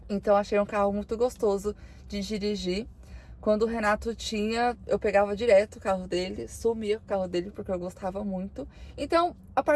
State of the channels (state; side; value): identical; both; correlation 1.00